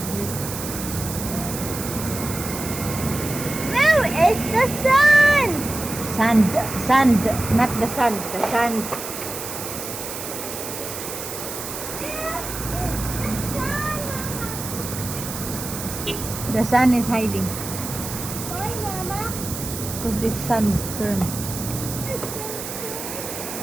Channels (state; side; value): noise; right; hiss, 7 dB below the sound